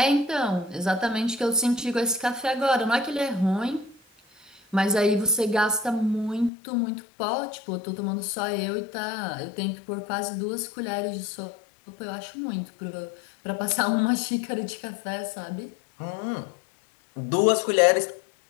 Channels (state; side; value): drops out; right; at 6.5 s